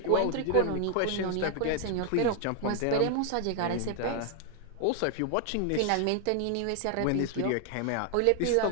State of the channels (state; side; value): different; both; correlation 0.00